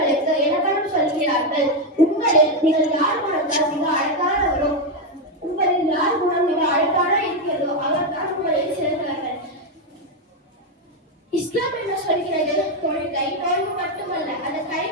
இலக்கணம் சொல்கிறார்கள். நீங்கள் யார் குணத்தால் மிக அழகானவரோ, உங்களில் யார் குணம் மிக அழகான இருக்கிறதோ அவர்தான் உங்களில் சிறந்தவர்கள். இஸ்லாம் என்ன சொல்கிறது? தொழுகை நோன்பு மட்டுமல்ல, அதை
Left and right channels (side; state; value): both; normal; correlation 0.05